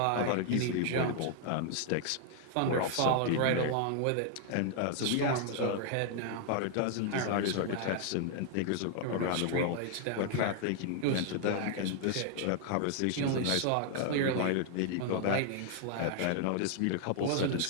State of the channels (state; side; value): different; both; correlation 0.00